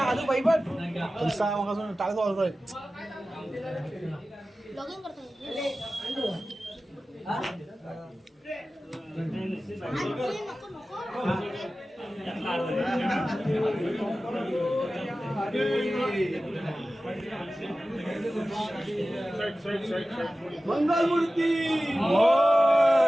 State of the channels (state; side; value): normal; both; correlation 0.95